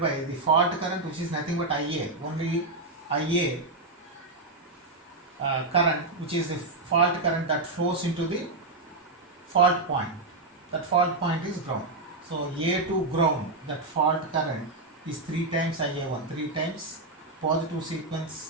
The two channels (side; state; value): left; quieter; 3.2 dB